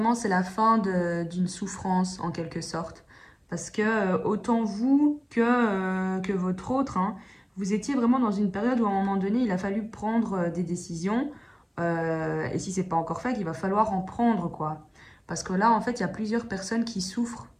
c'est la fin d'une souffrance, en quelque sorte. Parce que autant vous que votre autre, hein, vous étiez vraiment dans une période où, à un moment donné, il a fallu prendre des décisions. Et si c'est pas encore fait, il va falloir en prendre, quoi. Parce que là, en fait, il y a plusieurs personnes qui souffrent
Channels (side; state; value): both; identical; correlation 1.00